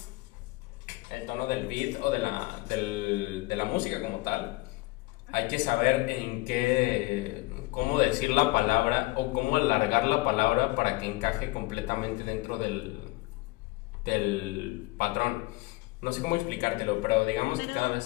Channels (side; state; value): right; quieter; 22.0 dB